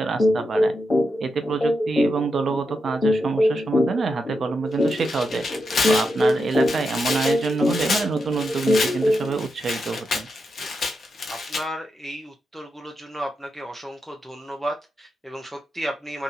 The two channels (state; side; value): normal; both; correlation 0.86